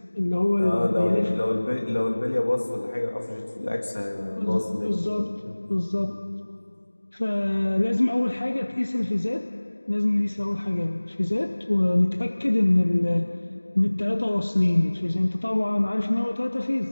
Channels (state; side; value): inverted; both; correlation -1.00